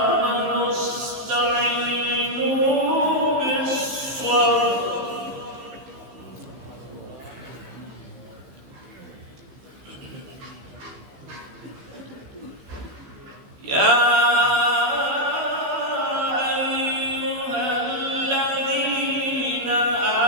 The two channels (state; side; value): late; left; 15 ms